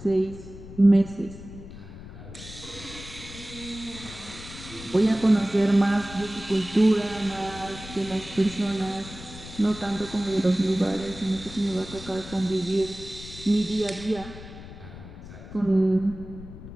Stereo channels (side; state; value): left; noise; rumble, 14 dB below the sound